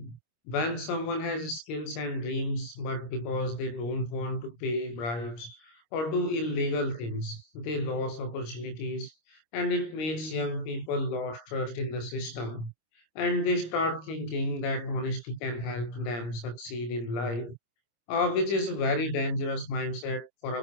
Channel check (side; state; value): right; late; 25 ms